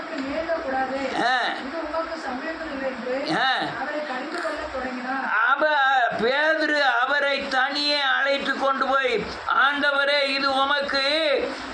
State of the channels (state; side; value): identical; both; correlation 1.00